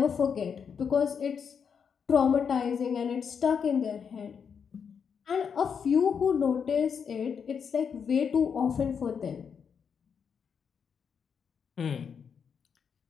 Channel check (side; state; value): right; quieter; 6.8 dB